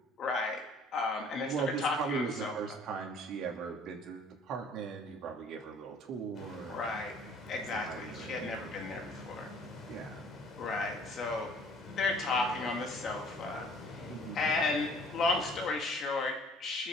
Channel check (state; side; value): normal; both; correlation 0.54